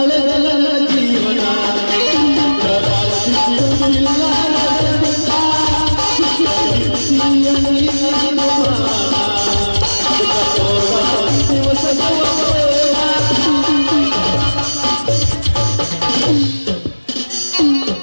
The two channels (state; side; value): inverted; both; correlation -1.00